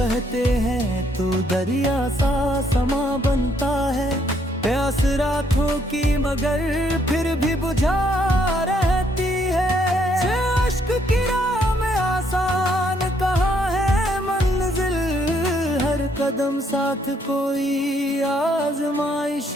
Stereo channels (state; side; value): normal; both; correlation 0.70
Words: हैं तो दरिया सा समा बनता है, प्यास रातों की मगर फिर भी बुझा रहती है। अश्क की राह में आसान कहाँ है मंजिल, हर कदम साथ कोई आजमाइश